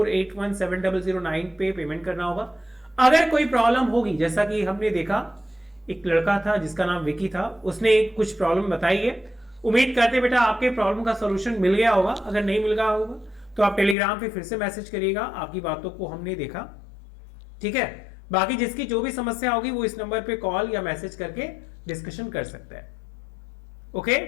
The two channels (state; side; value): drops out; right; at 14.0 s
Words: पे पेमेंट करना होगा। अगर कोई प्रॉब्लम होगी, जैसा कि हमने देखा एक लड़का था जिसका नाम विकी था, उसने कुछ प्रॉब्लम बताई है। उम्मीद करते बेटा आपके प्रॉब्लम का सॉल्यूशन मिल गया होगा। अगर नहीं मिल गया होगा तो आप टेलीग्राम पे फिर से मैसेज करिएगा, आपकी बातों को हमने देखा। ठीक है, बाकी जिसकी जो भी समस्या होगी वो इस नंबर पे कॉल या मैसेज करके डिस्कशन कर सकते हैं। ओके,